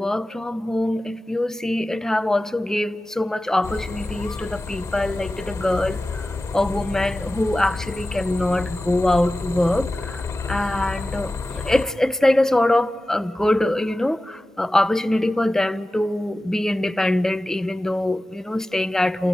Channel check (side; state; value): both; normal; correlation 0.95